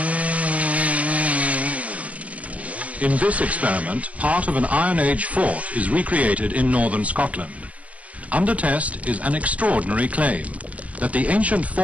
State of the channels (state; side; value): late; left; 0.066 ms